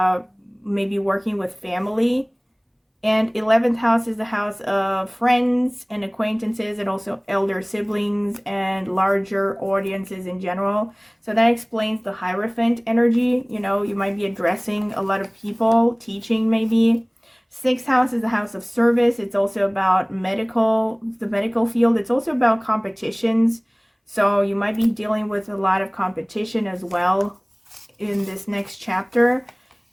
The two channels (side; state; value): both; identical; correlation 1.00